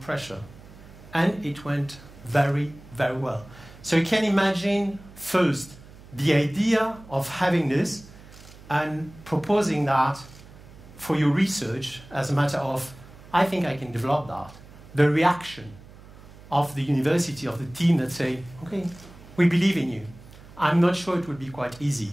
And it went very, very well. So you can imagine, first, the idea of having this and proposing that for your research as a matter of I think I can develop that. The reaction of the university, of the team that say, okay, we believe in you. I'm not sure it would be quite easy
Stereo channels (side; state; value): right; noise; hum, 20 dB below the sound